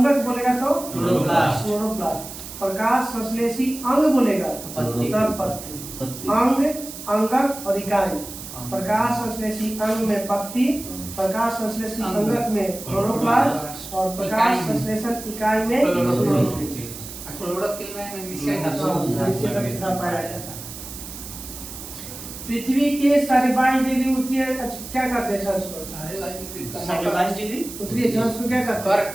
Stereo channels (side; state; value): right; noise; hiss, 12 dB below the sound